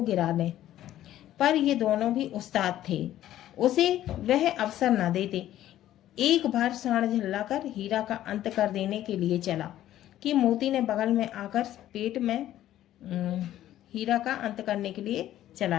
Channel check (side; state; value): right; quieter; 12.9 dB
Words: गिरा ले, पर ये दोनों भी उस्ताद थे, उसे वह अवसर न देते। एक बार सांड झल्लाकर हीरा का अंत कर देने के लिए चला कि मोती ने बगल में आकर पेट में हीरा का अंत करने के लिए